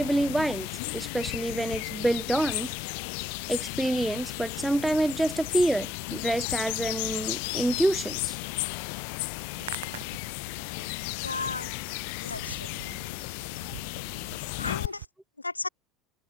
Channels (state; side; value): normal; both; correlation 0.66